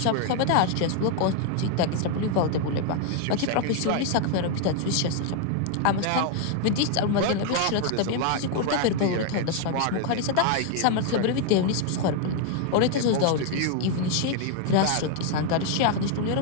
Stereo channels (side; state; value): both; different; correlation 0.00